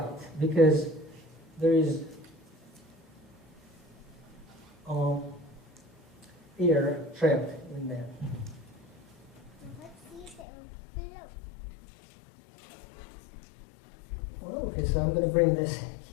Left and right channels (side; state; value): right; drops out; at 10.5 s